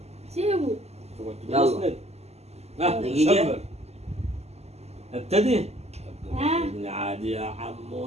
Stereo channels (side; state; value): left; late; 0.30 ms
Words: سيبه. يلا. اسند. دقيقة. شبر. ابتدي. ها؟ عادي يا